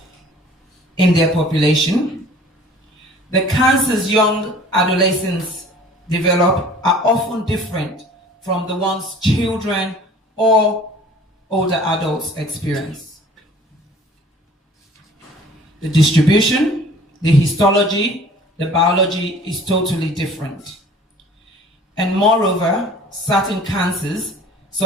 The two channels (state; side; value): normal; both; correlation 0.49